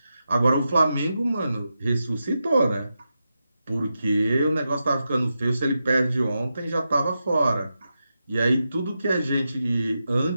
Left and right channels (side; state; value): both; inverted; correlation -0.88